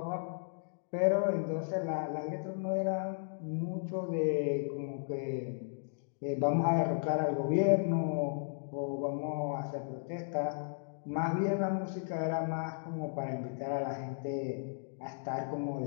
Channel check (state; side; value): silent; right; digital silence